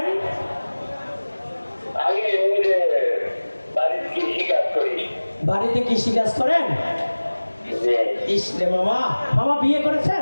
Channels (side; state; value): both; inverted; correlation -1.00